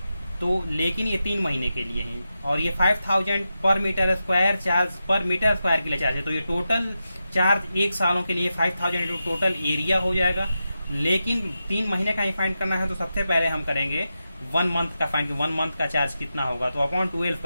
तो लेकिन ये 3 महीने के लिए ही, और ये 5000 पर मीटर स्क्वायर चार्ज पर मीटर स्क्वायर के लिए चार्ज है। तो ये टोटल चार्ज 1 सालों के लिए 5000 इंटू टोटल एरिया हो जाएगा। लेकिन 3 महीने का ही फाइंड करना है तो सबसे पहले हम करेंगे 1 मंथ का फाइंड। 1 मंथ का चार्ज कितना होगा, तो अपॉन 12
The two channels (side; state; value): both; inverted; correlation -0.90